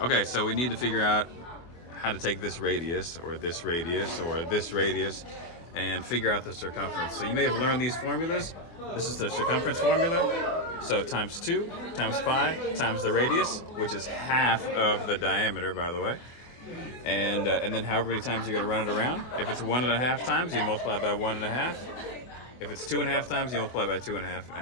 Okay, so we need to figure out how to take this radius, or this radius, or this radius, and figure out the circumference. So you may have learned these formulas. This is the circumference formula. So times 2 times pi times the radius, which is half of the diameter, by the way. And then however many times you're going to run it around. If it's 1.5 times, you multiply by 1.5. If it's 2.5 times, you multiply by 2.5,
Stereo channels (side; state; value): right; late; 24 ms